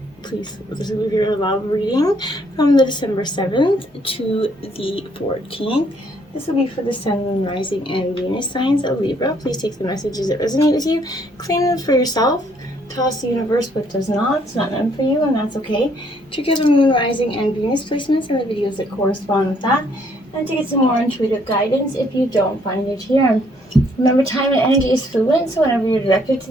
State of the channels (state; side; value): normal; both; correlation 0.67